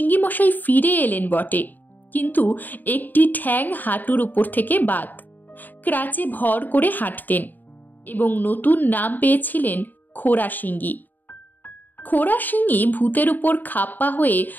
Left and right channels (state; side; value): late; right; 0.088 ms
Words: মশাই ফিরে এলেন বটে, কিন্তু একটি ঠ্যাং হাঁটুর উপর থেকে বাদ। ক্রাচে ভর করে হাঁটতেন এবং নতুন নাম পেয়েছিলেন খোরা সিঙ্গি। খোরা সিঙ্গি ভূতের উপর খাপ্পা হয়ে